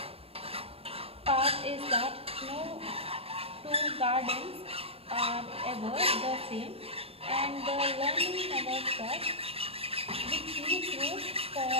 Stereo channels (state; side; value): late; left; 0.28 ms